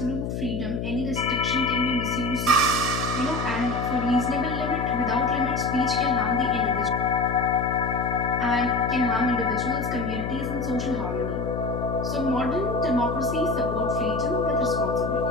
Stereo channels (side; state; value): left; noise; hum, 3 dB below the sound